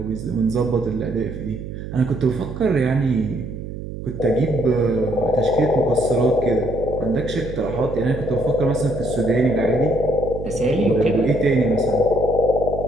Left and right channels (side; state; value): right; noise; hum, 9 dB below the sound